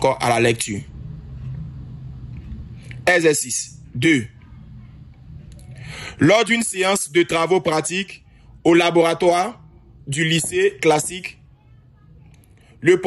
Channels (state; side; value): identical; both; correlation 1.00